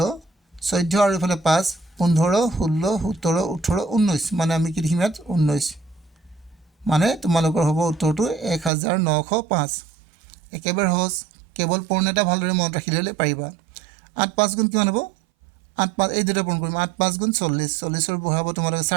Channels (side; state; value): left; drops out; at 8.7 s